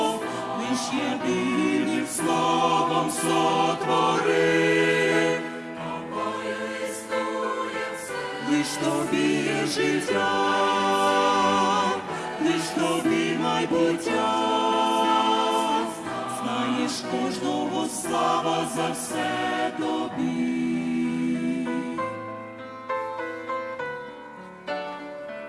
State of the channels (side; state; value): both; identical; correlation 1.00